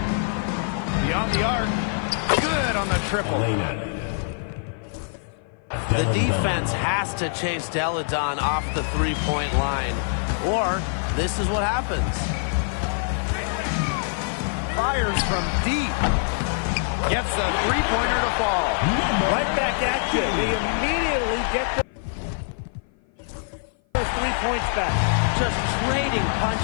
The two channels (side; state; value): right; silent; 55 dB below the other